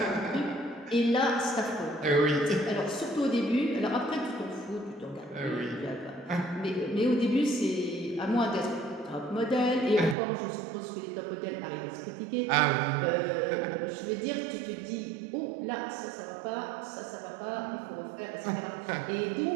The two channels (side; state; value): left; drops out; at 10.2 s